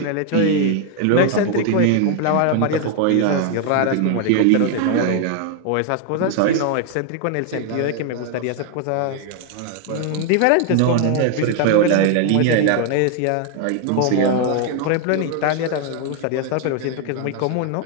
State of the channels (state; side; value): different; both; correlation 0.00